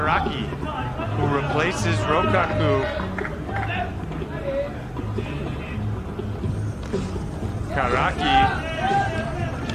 who replaces Rokaku. Karaki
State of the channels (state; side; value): identical; both; correlation 1.00